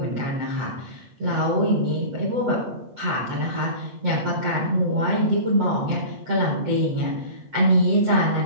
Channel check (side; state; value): left; late; 7.8 ms